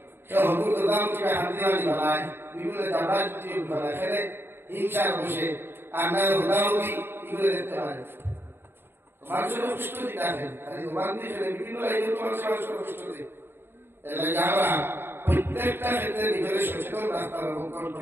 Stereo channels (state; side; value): late; left; 0.11 ms